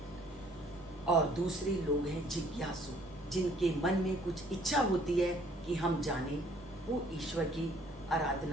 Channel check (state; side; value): normal; both; correlation 0.60